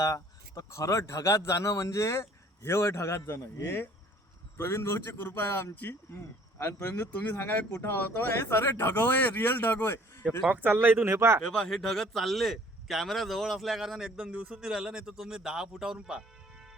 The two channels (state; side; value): normal; both; correlation 0.55